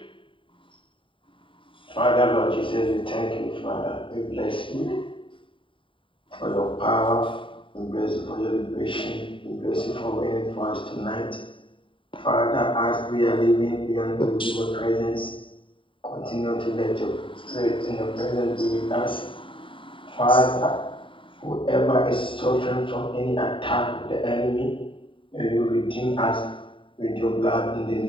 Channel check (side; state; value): right; late; 0.25 ms